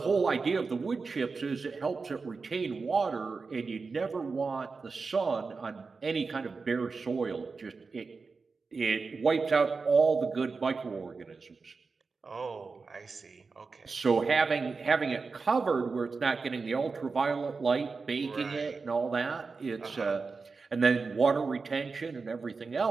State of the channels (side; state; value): left; quieter; 4.5 dB